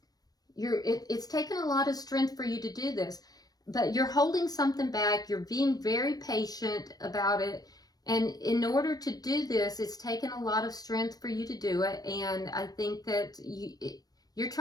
It's taken a lot of strength for you to do this, but you're holding something back. You're being very patient about it. And in order to do this, it's taken a lot of strength for you to do it. And I think that you're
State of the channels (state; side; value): late; right; 0.19 ms